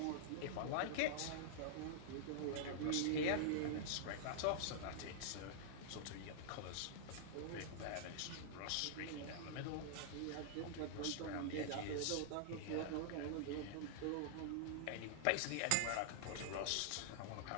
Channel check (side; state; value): both; different; correlation -0.01